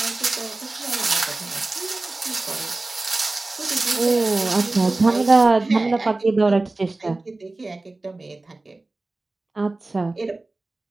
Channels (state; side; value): quieter; left; 3.1 dB